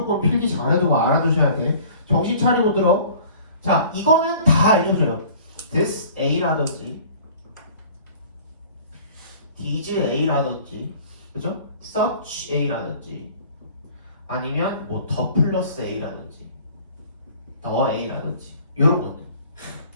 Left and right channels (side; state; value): both; inverted; correlation -0.49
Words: 필기 잘해두고 알아두셔야 돼. 정신 차리고 들어. 자, 이거는 다 알려줘요. this A라든지 these A라든지 그죠? such A라든지 아니면 뭐 더 플러스 A라든지 더 A라든지 이런 것들